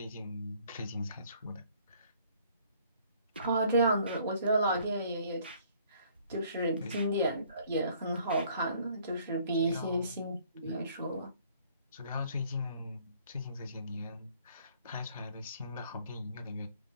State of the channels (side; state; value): both; inverted; correlation -0.60